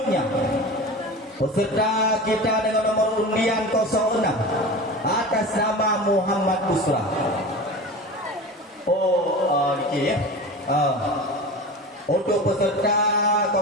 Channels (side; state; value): both; normal; correlation 0.31